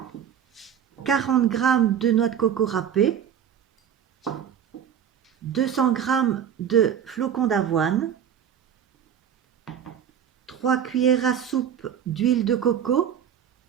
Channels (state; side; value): quieter; left; 8.8 dB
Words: 40 g de noix de coco râpées. 200 g de flocons d'avoine. 3 cuillères à soupe d'huile de coco.